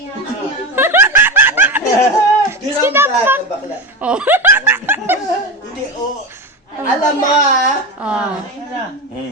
Sinapak! Bakla. Oh. Hindi, oh. Alam mo ha? Oh.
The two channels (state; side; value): normal; both; correlation 0.19